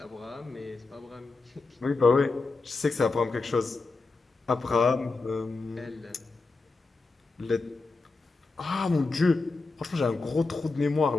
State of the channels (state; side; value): quieter; right; 3.8 dB